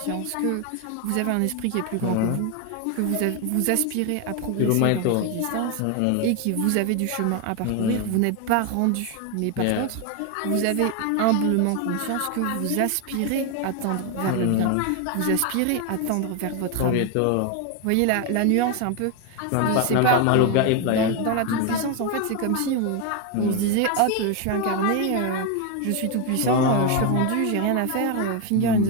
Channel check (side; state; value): both; different; correlation 0.01